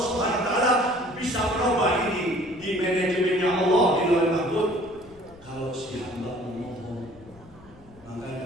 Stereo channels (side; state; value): left; noise; rumble, 24 dB below the sound